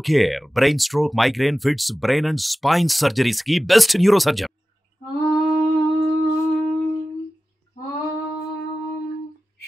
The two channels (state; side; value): normal; both; correlation 0.96